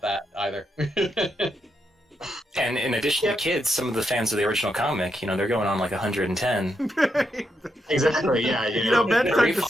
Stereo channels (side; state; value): both; normal; correlation 0.82